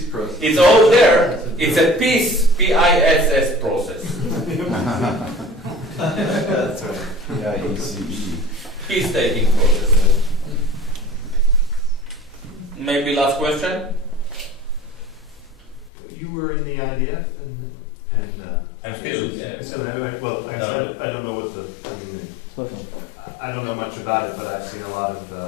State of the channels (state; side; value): drops out; right; at 15.9 s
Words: process. It's all there. It's a peace, P-I-S-S process. That's right. P-I-E-C-E. Peace-taking process. Maybe last question? You were in the IDF and I'm still, yeah. So anyway, well, I don't know what I don't know much about it, but I've seen a lot of,